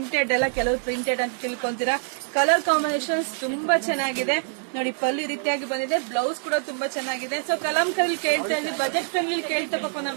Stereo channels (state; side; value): silent; left; digital silence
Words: ಎಲ್ಲ, ಕೆಲವು ಪ್ರಿಂಟೆಡ್ ಅಂತ ತಿಳ್ಕೊಂತೀರಾ. ಕಲರ್ ಕಾಂಬಿನೇಷನ್ಸ್ ತುಂಬಾ ಚೆನ್ನಾಗಿದೆ ನೋಡಿ. ಪಲ್ಲು ಈ ರೀತಿಯಾಗಿ ಬಂದಿದೆ, ಬ್ಲೌಸ್ ಕೂಡ ತುಂಬಾ ಚೆನ್ನಾಗಿದೆ. ಸೊ ಕಲಂಕರಲ್ಲಿ ಕೇಳ್ತಾ ಇದ್ವಿ, ಬಜೆಟ್ ಫ್ರೆಂಡ್ಲಿ ಕೇಳ್ತಾ ಪಾಪ